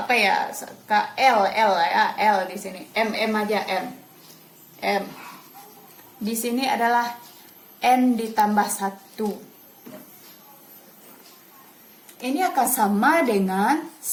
ya? L ya, L di sini. M aja M. M. Di sini adalah N ditambah 1. Ini akan sama dengan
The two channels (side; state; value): both; identical; correlation 1.00